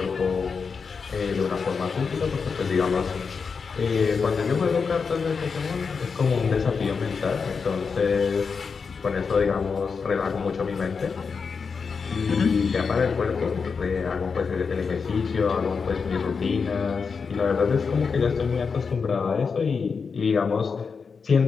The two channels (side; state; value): right; quieter; 5.4 dB